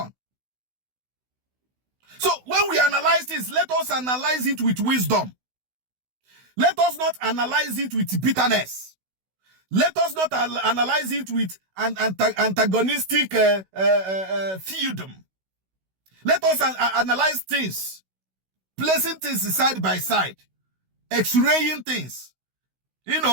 So when we analyze this, let us analyze it with wisdom. Let us not analyze it with bitterness. Let us not analyze it with an antagonistic feudum. Let us analyze things, placing things side by side, x-raying things, you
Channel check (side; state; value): left; late; 16 ms